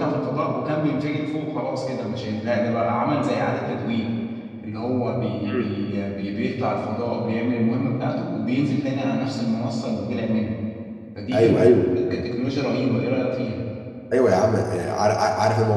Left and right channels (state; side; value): identical; both; correlation 1.00